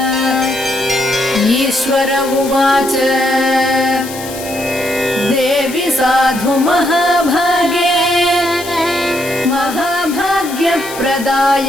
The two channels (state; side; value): noise; left; hiss, 13 dB below the sound